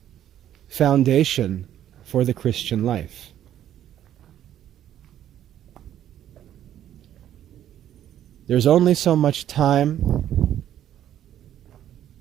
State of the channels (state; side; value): quieter; left; 11.2 dB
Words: foundation for the Christian life. There's only so much time.